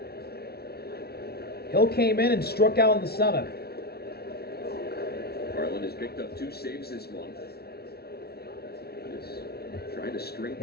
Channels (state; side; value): late; right; 0.46 ms